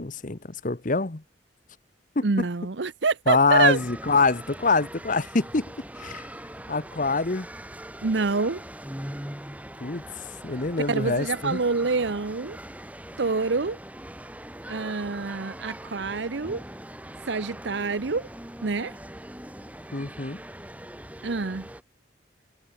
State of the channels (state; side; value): normal; both; correlation -0.11